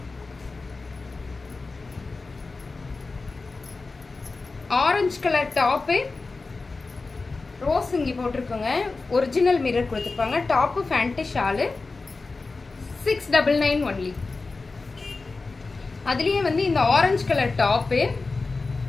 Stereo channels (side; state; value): right; quieter; 3.8 dB